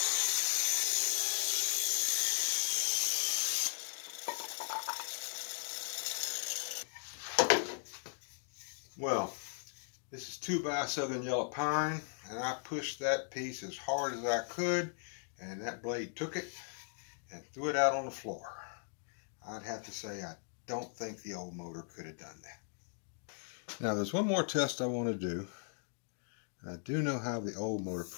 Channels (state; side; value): silent; right; digital silence